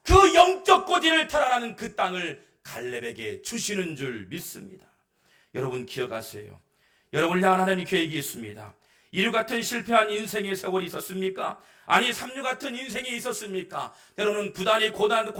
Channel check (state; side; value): identical; both; correlation 1.00